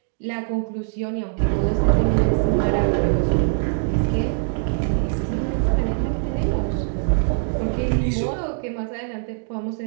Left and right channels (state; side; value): silent; left; digital silence